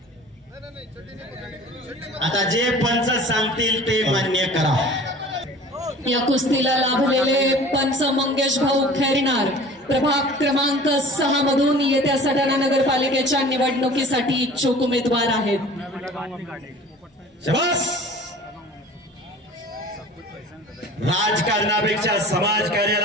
आता जे पंच सांगतील ते मान्य करा. या कुस्तीला लाभलेले पंच मंगेश भाऊ खैरनार प्रभाग क्रमांक 6 मधून येत्या सटाणा नगरपालिकेच्या निवडणुकीसाठी इच्छुक उमेदवार आहेत. शाबास. राजकारणापेक्षा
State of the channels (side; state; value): both; normal; correlation 0.43